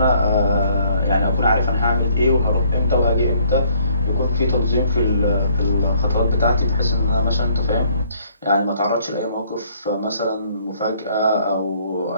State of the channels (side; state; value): both; inverted; correlation -0.63